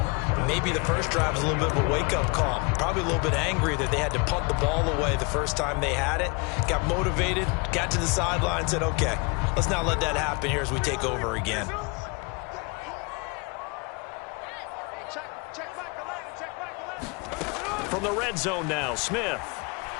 Maybe the first drive was a little bit of a wake-up call. Probably a little bit angry that they had to punt the ball away the first time they had it. Got motivated, got to the sideline, said, okay, let's not let that happen here as we take over again. From the red zone now, Smith.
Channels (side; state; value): right; quieter; 30.3 dB